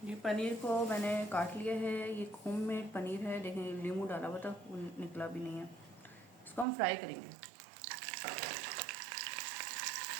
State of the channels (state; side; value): drops out; left; at 6.7 s